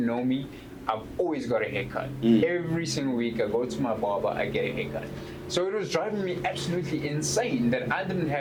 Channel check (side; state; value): both; identical; correlation 1.00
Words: me, I've always got a haircut. Every single week I go to my barber, I get a haircut. So it was driving me absolutely insane that I didn't